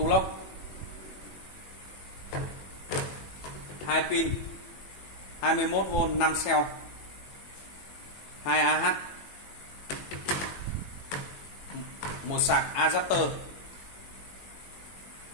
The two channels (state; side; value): late; right; 21 ms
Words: lock, 2 pin 21V 5 cell, 2 AH, một sạc adapter.